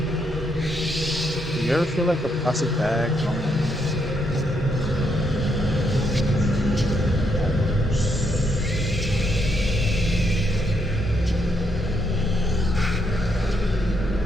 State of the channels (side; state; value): both; normal; correlation 0.77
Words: Do you ever feel like a plastic bag?